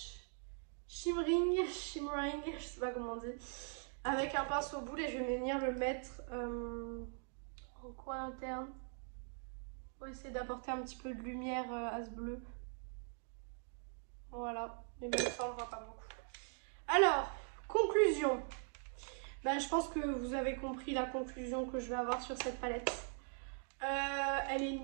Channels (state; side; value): silent; left; 50 dB below the other